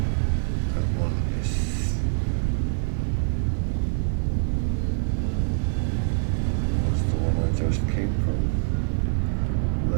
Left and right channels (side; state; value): left; silent; 56 dB below the other